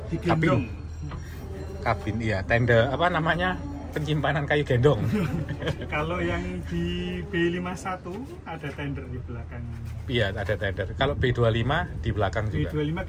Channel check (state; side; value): identical; both; correlation 1.00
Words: Digendong. kabin. Iya, tenda apa namanya? Penyimpanan kayu gendong. Kalau yang di B51 ada tender di belakang. Iya, ada tender. Kalau B25 di belakang juga. B25